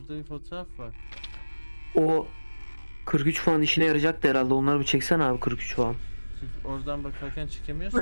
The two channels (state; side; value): inverted; both; correlation -1.00